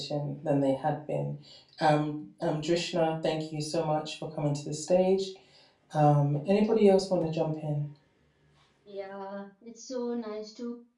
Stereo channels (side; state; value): both; identical; correlation 1.00